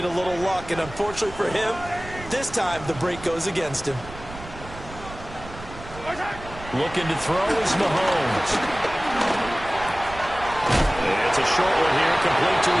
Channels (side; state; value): right; noise; rumble, 15 dB below the sound